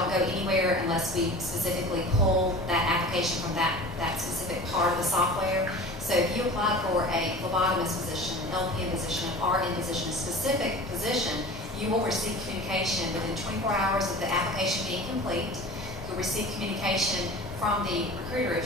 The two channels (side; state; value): both; normal; correlation 0.38